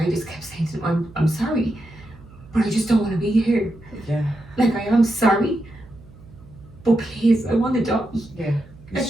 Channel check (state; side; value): noise; right; hum, 22 dB below the sound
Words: I just kept saying to him, I'm sorry, but I just don't want to be here. Yeah. Like, I am sorry, but please, I want to die. Yeah. You